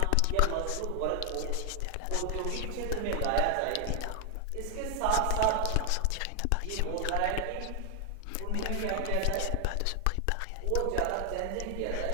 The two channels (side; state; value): both; different; correlation 0.00